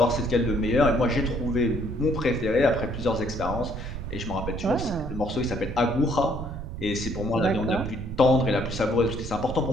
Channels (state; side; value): noise; right; rumble, 7 dB below the sound